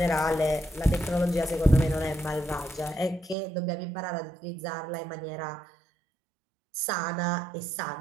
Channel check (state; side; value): drops out; left; at 3.4 s